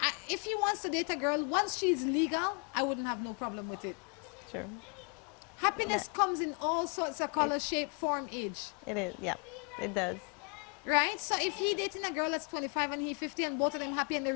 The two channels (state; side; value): quieter; right; 37.6 dB